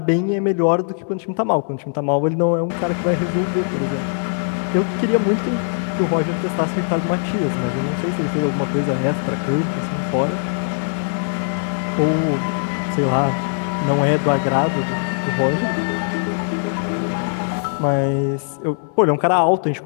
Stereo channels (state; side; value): silent; right; digital silence